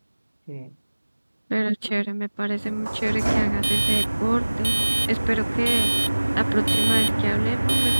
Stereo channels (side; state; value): both; inverted; correlation -1.00